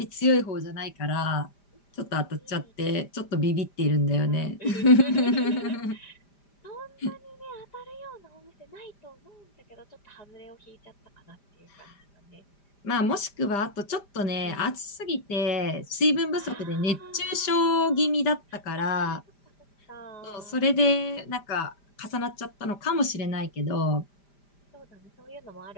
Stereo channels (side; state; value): right; late; 5.0 ms